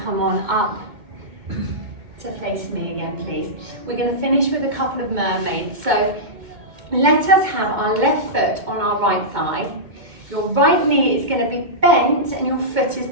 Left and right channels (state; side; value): late; left; 2.2 ms